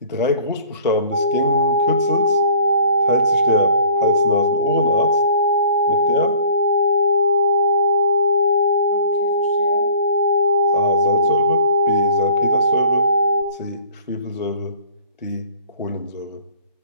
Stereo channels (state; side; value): inverted; both; correlation -0.51